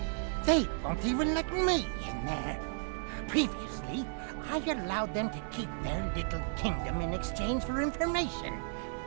They won't even let me in there. Previously, I allowed them to keep their little kingdom in exchange for information.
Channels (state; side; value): silent; left; digital silence